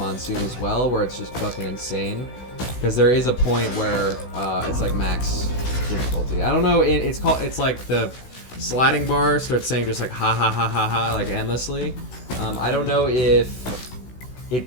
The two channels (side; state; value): right; late; 16 ms